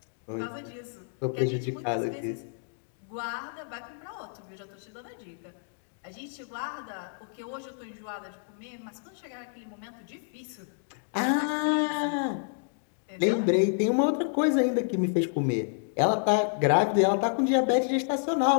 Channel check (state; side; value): silent; right; digital silence